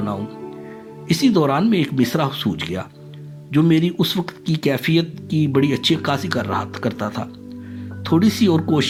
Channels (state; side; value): identical; both; correlation 1.00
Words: इसी दौरान में एक मिसरा सूझ गया जो मेरी उस वक्त की कैफियत की बड़ी अच्छी अक्कासी करता था। थोड़ी सी और